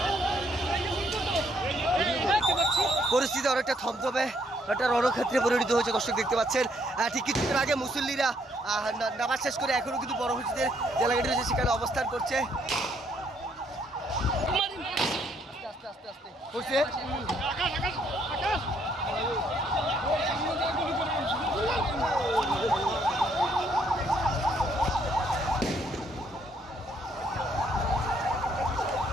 পরিস্থিতি অনেকটা থমথমে একটা রণক্ষেত্রে পরিণত হয়েছে দর্শক দেখতে পাচ্ছেন। ঠিক কিছুক্ষণ আগে মুসল্লিরা নামাজ শেষ করে এখনো কিন্তু বড় মসজিদের যে এলাকাটি রয়েছে সেখানে অবস্থান করছে। আস্তে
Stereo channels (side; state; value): both; normal; correlation 0.69